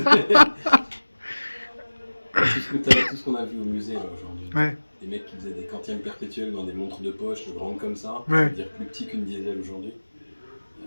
Tout ce qu'on a vu au musée là, aujourd'hui. Ouais. Des mecs qui faisaient des quantièmes perpétuels dans des montres de poche grandes comme ça, Ouais. c'est-à-dire plus petits qu'une diesel aujourd'hui.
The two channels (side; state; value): both; inverted; correlation -1.00